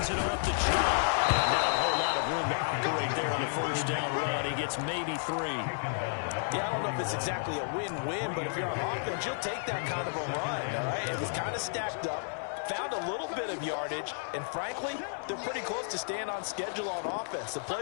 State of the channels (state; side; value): silent; right; digital silence